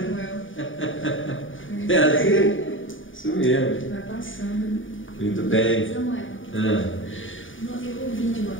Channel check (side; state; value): right; late; 0.57 ms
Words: É assim? Isso mesmo. Vai passando. Muito bem. Samuel, eu ouvi de uma